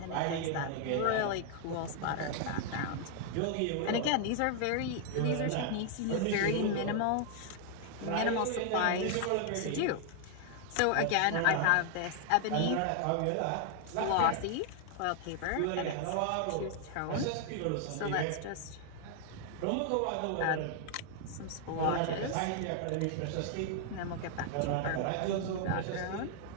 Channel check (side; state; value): both; different; correlation 0.00